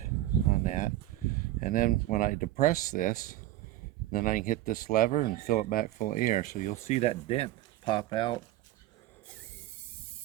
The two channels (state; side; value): quieter; left; 14.9 dB